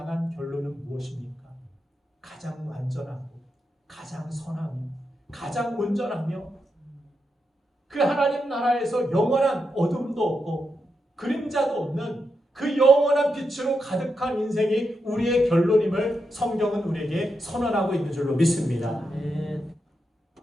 결론은 무엇입니까? 가장 완전하고 가장 선하며 가장 온전하며 그 하나님 나라에서 영원한 어둠도 없고 그림자도 없는 그 영원한 빛으로 가득한 인생이 우리의 결론임을 성경은 우리에게 선언하고 있는 줄로 믿습니다.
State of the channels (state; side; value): normal; both; correlation 0.85